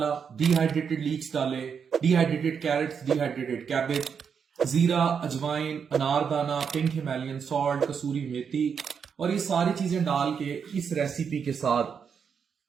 डिहाइड्रेटेड लीक्स डाले, डिहाइड्रेटेड कैरेट्स, डिहाइड्रेटेड कैबेज, जीरा, अजवाइन, अनारदाना, पिंक हिमालयन सॉल्ट, कसूरी मेथी, और ये सारी चीजें डाल के इस रेसिपी के साथ।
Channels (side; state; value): left; quieter; 6.8 dB